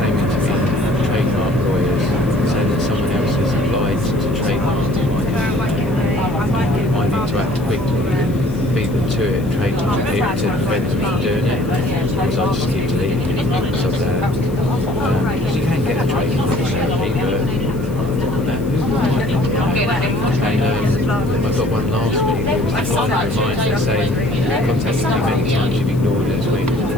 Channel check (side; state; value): left; noise; hiss, 24 dB below the sound